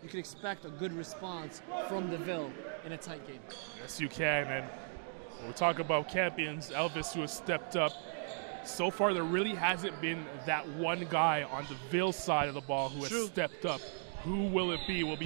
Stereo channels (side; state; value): left; silent; digital silence